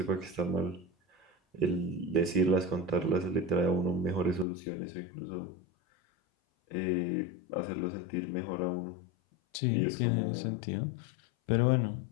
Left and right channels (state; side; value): drops out; right; at 4.5 s